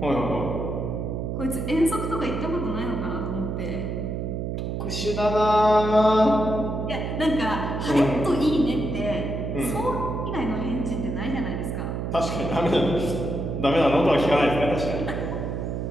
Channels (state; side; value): noise; right; hum, 3 dB below the sound